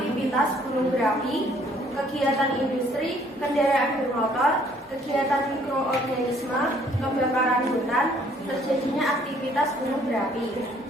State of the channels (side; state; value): both; normal; correlation 0.61